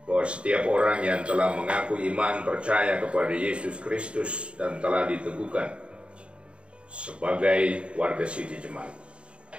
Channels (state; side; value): late; left; 0.057 ms